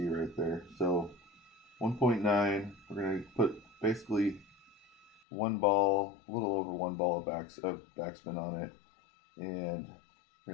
right there. So 1.9, we're going to put basically one ball, a little over one ball of backspin on it, and we're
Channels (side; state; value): right; drops out; at 5.2 s